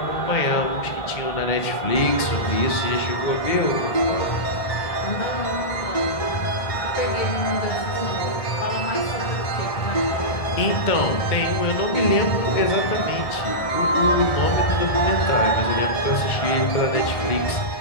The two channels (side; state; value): right; late; 1.7 ms